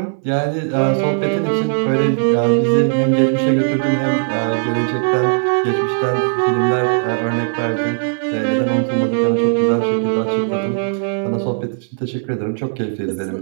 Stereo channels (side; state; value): left; silent; digital silence